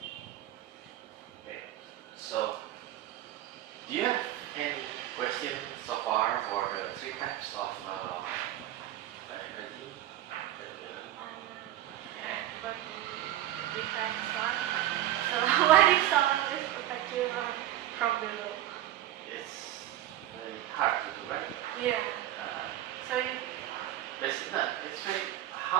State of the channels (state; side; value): quieter; left; 13.4 dB